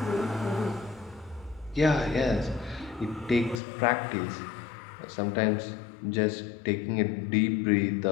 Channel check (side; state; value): right; drops out; at 3.6 s